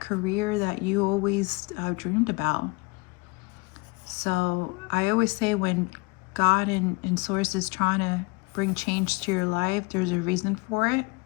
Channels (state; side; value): quieter; right; 26.3 dB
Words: that you always dreamed about. So I always say when God and Source is trying to bring change to your life, there's a reason for it,